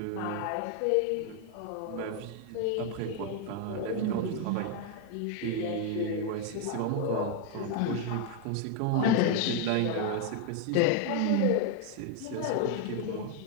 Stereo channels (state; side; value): different; both; correlation 0.00